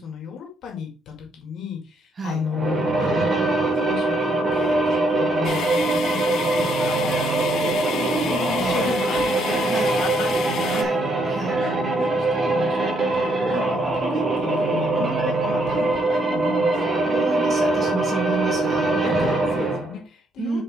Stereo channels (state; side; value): normal; both; correlation 0.73